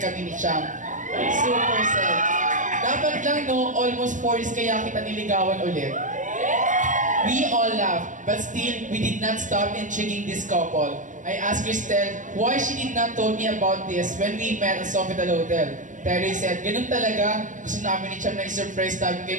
kami ni Chang. Super said, dapat lang no, almost 4 years kaya kita niligawan ulit. We all laughed, but still, we did not stop intriguing this couple. I asked Cristel why she did not told me about this when we met at Sofitel Hotel. Terry said, ganun talaga, gusto namin ni Chang na i-surprise namin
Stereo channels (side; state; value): left; late; 0.37 ms